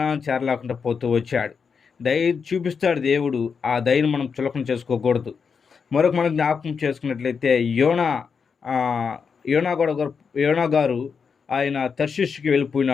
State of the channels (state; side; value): quieter; right; 5.9 dB